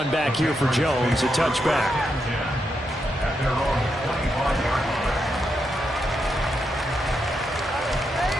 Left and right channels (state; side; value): normal; both; correlation 0.83